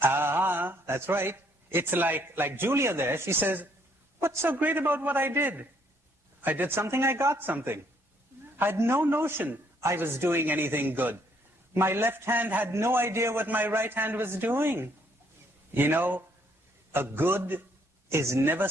right. It's like Julia there. She says, what's so great about what I did? I did something, I got something. I had no notion I was doing anything good. My left hand had no idea what my right hand was doing. You know, a good is never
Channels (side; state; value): both; normal; correlation 0.68